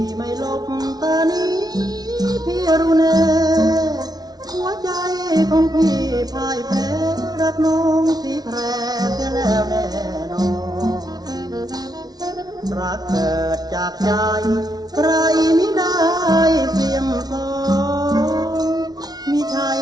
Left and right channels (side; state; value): left; late; 0.19 ms